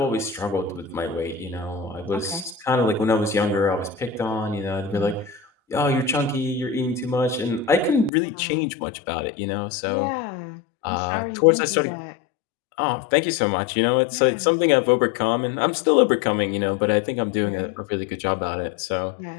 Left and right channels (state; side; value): drops out; right; at 8.1 s